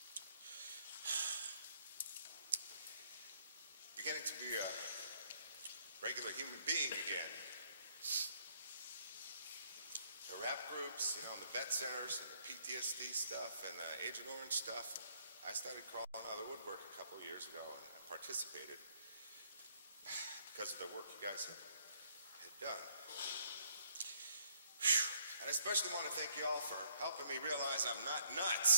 beginning to be a regular human being again. The rap groups, and the vet centers, and the PTSD stuff, and the Agent Orange stuff. I started crawling out of the woodwork a couple of years ago, and I participated because of the work you guys had done. I especially want to thank you all for helping me realize I'm not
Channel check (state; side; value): inverted; both; correlation -0.68